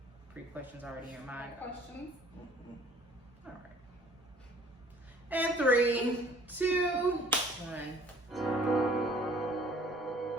pre-questions already in your mind? Questions? All right. And 3, 2, 1.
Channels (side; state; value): both; normal; correlation 0.54